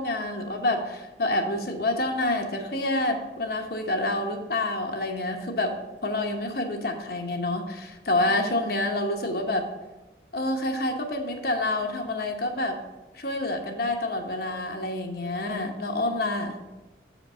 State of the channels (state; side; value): normal; both; correlation -0.09